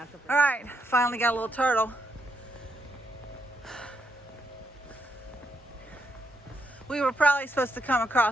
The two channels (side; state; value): both; normal; correlation 0.79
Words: All right, finally got a little turtle. We were probably supposed to come